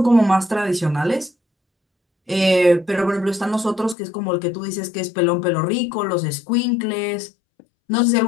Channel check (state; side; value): drops out; right; at 4.0 s